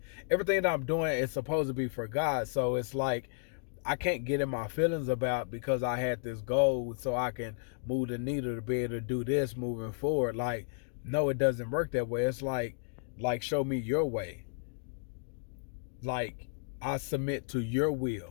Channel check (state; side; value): silent; right; digital silence